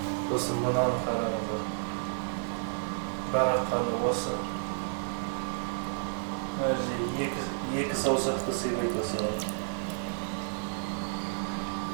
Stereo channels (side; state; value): left; silent; digital silence